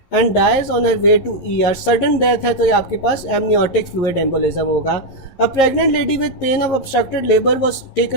and dies on her way to ER. Sudden death है तो ये आपके पास amniotic fluid embolism होगा। A pregnant lady with pain of obstructed labor was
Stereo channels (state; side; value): late; right; 11 ms